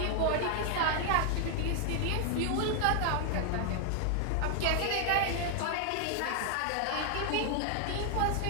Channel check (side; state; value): both; different; correlation 0.00